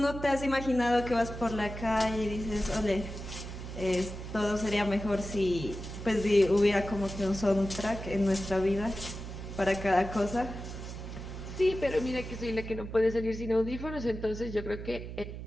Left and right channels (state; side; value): noise; right; hum, 9 dB below the sound